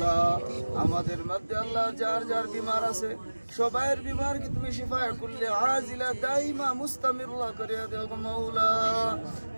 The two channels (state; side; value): inverted; both; correlation -1.00